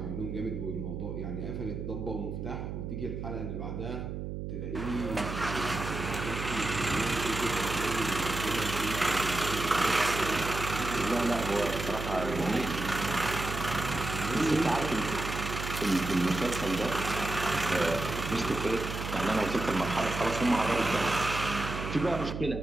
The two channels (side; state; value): right; noise; hum, 6 dB below the sound